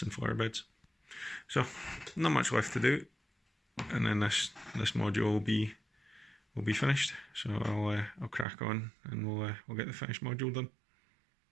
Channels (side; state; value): left; drops out; at 8.5 s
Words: and flower beds. So not much left to do, and then this module will be finished. So I'll crack on, and we'll get the finished module done.